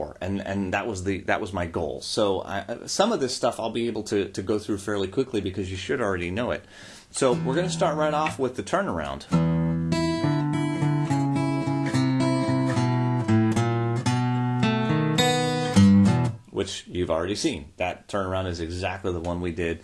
and that was my goal. So some of this stuff I'll be able to go through fairly quickly because you should already know it. So we're going to start right off with the turnaround. Which you've already seen. That turnaround is exactly the one we did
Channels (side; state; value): both; identical; correlation 1.00